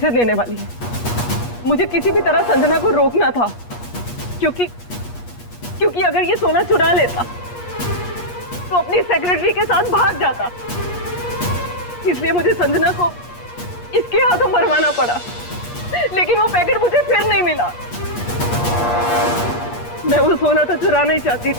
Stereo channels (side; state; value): right; late; 8.4 ms